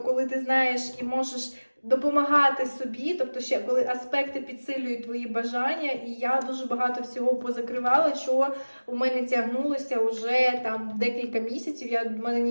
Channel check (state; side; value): inverted; both; correlation -1.00